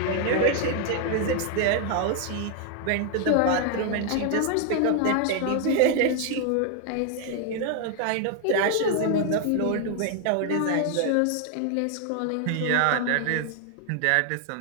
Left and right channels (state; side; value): different; both; correlation 0.00